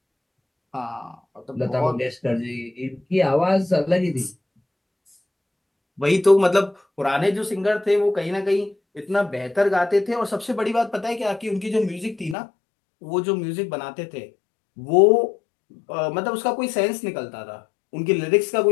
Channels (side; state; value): right; drops out; at 12.4 s